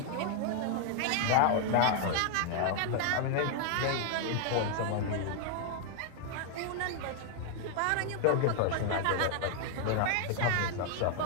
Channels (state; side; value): different; both; correlation 0.00